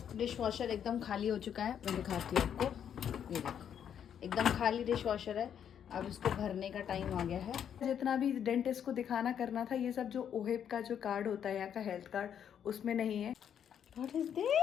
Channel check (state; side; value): quieter; right; 8.8 dB